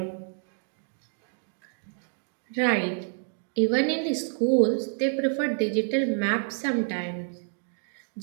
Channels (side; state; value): left; silent; digital silence